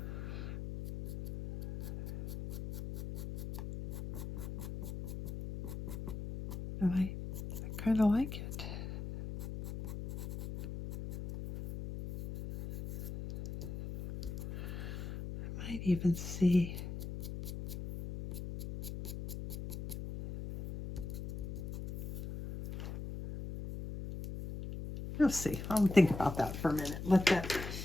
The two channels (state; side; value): noise; left; hum, 7 dB below the sound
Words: And I kind of like it. I might even see we'll see. I'll think about that for a minute. I'm